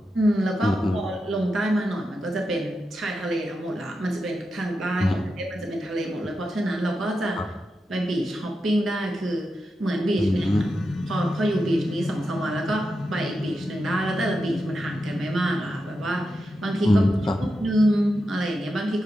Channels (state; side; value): normal; both; correlation 0.88